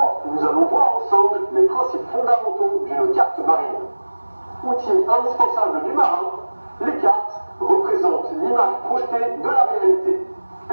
nous allons voir ensemble les principes fondamentaux d'une carte marine. Outil indispensable du marin, les cartes représentent l'image projetée de la réalité.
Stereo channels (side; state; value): both; inverted; correlation -1.00